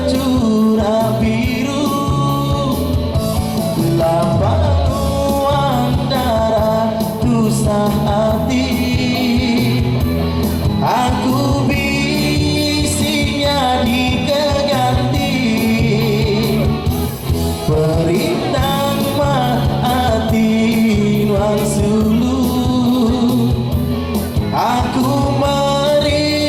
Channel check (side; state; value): both; identical; correlation 1.00